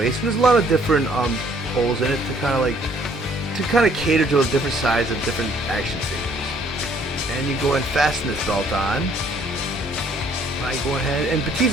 and there's a lot of different holes in it to kind of cater to a different size of different action figures. And you go and fasten this belt on. I go ahead, and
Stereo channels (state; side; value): normal; both; correlation 0.62